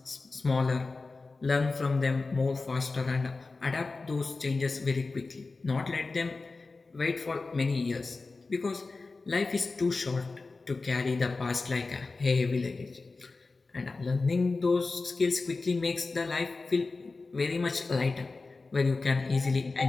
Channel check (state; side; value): quieter; right; 3.8 dB